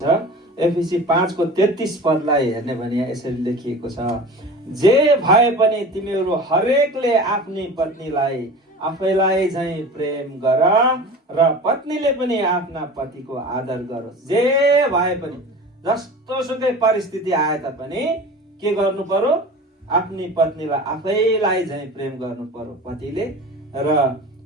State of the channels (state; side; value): normal; both; correlation 0.37